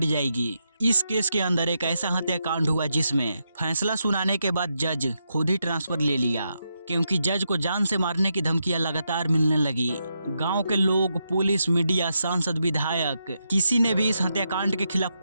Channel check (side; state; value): both; inverted; correlation -0.83